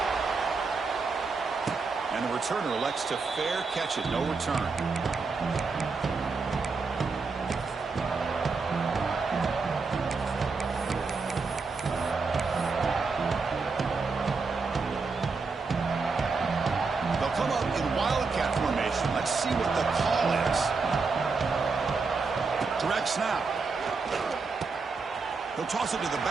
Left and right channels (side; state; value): left; quieter; 4.5 dB